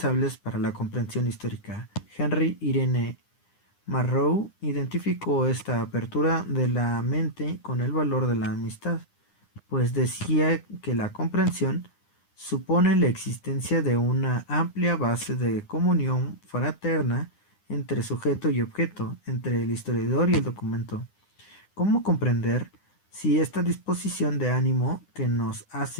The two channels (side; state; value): right; late; 9.8 ms